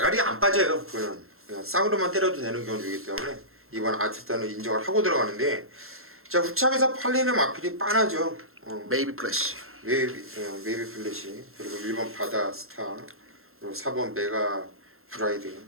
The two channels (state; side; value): late; left; 0.62 ms